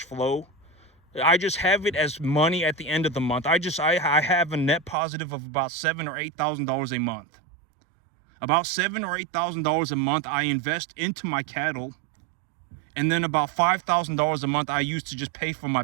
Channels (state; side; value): drops out; left; at 5.0 s